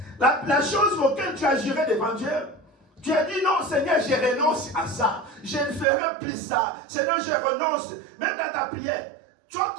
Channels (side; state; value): left; drops out; at 5.9 s